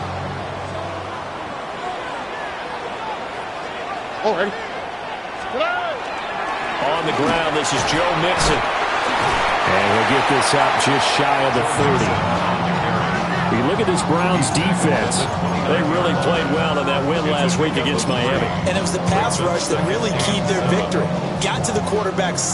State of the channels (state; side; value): identical; both; correlation 1.00